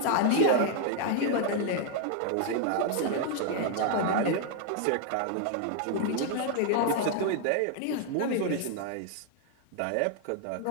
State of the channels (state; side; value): different; both; correlation 0.00